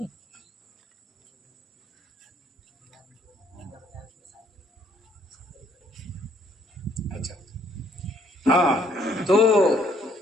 اچھا ہاں تو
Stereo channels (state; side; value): normal; both; correlation 0.66